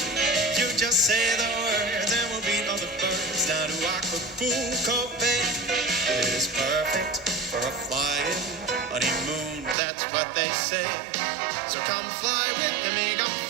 You just say the words and we'll beat all the birds down to Acapulco Bay. It is perfect for a flying honeymoon, that's what they say. So come fly with me, come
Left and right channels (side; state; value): left; drops out; at 9.8 s